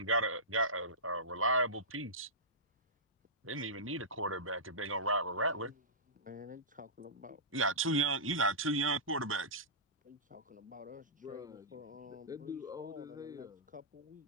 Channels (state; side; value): normal; both; correlation -0.19